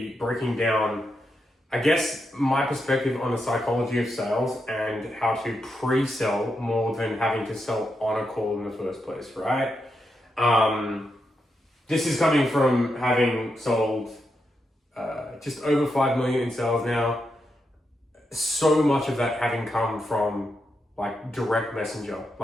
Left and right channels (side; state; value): both; normal; correlation 0.84